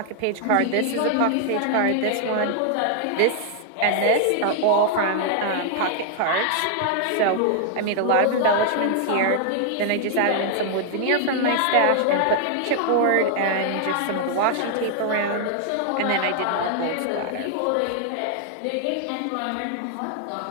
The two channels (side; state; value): both; different; correlation 0.00